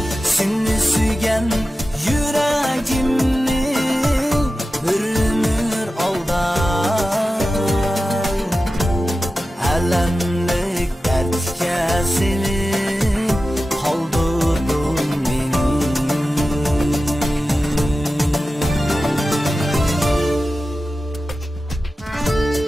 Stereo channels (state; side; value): normal; both; correlation 0.94